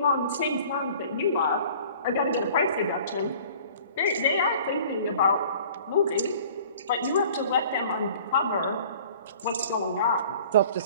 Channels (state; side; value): inverted; both; correlation -0.49